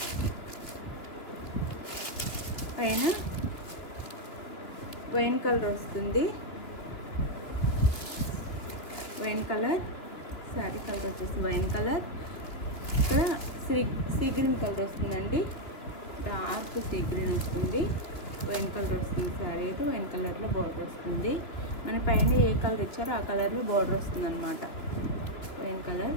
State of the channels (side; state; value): right; late; 3.2 ms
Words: పైన వైన్ కలర్ వస్తుంది, వైన్ కలర్ శారీ కలర్ వచ్చేసి వైన్ కలర్. ఇక్కడ సీ గ్రీన్ కలర్ వస్తుందండి, డార్క్ సీ గ్రీన్ వస్తుంది. వైన్ కలర్ వస్తుంది శారీ అయితే, వైన్ కలర్లో బార్డర్ వస్తుంది. మన పైన ఏ కలర్ ఇచ్చారో ఆ కలర్లో బార్డర్ వస్తుంది అనమాట. Wine colour.